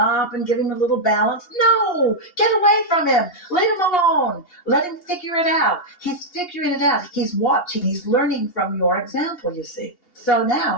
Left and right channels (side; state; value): right; late; 2.8 ms